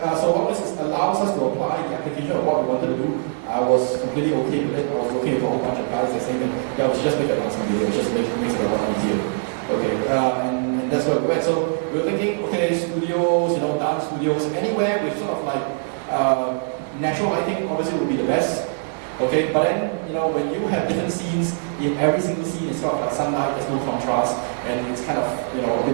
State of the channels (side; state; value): left; silent; digital silence